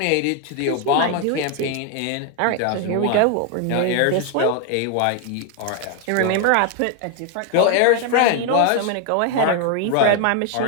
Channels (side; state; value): both; different; correlation 0.01